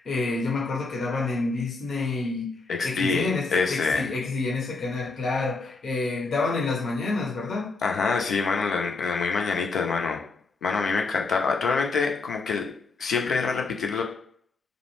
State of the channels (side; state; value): right; quieter; 3.9 dB